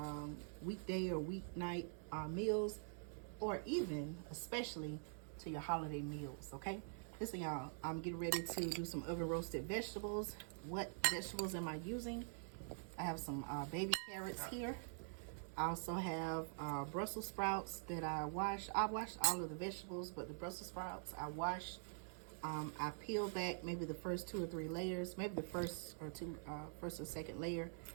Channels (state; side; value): silent; left; digital silence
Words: weekday or weeknight meals, or even, especially, to your holiday meals, okay? Listen y'all, I'm getting ready to do some oven roasted vegetables. What vegetables am I using? I have some baby carrots here. I also have Brussels sprouts that I washed. I washed all of the vegetables, but the Brussels sprouts I washed. I peeled back maybe the first 2 or 3 layers, maybe the first or second layer,